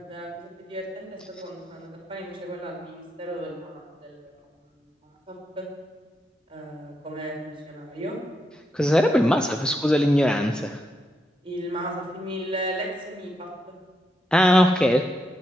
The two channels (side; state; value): both; normal; correlation 0.82